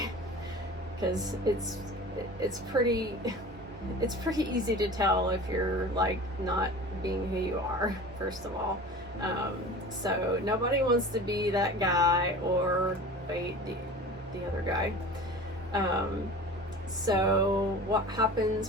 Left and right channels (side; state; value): both; normal; correlation 0.38